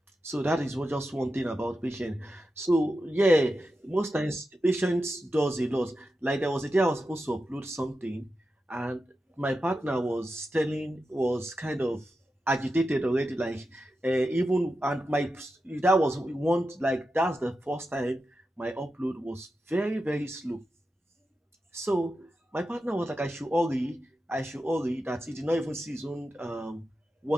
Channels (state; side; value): normal; both; correlation 0.90